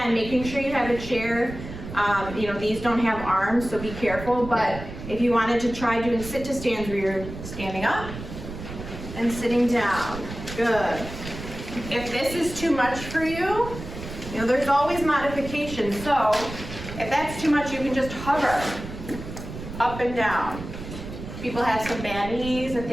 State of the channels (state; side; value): noise; right; rumble, 10 dB below the sound